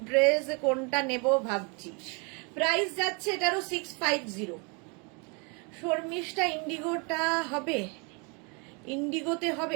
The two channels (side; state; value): left; quieter; 32.7 dB